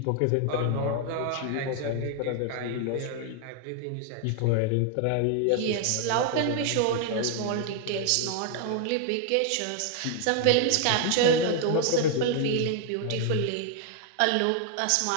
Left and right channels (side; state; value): both; different; correlation 0.00